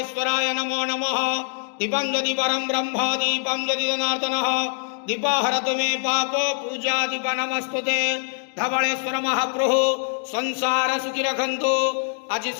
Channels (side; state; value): right; silent; 63 dB below the other